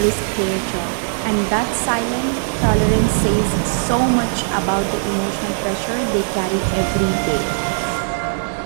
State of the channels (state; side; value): silent; left; digital silence